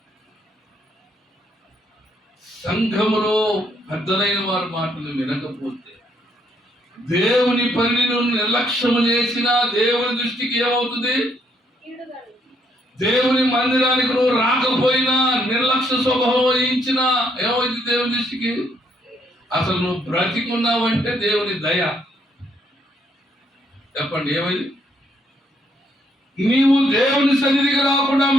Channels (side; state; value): both; normal; correlation 0.71